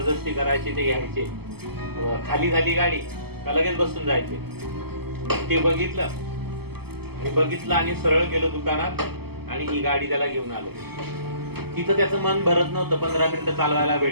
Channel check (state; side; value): late; left; 0.96 ms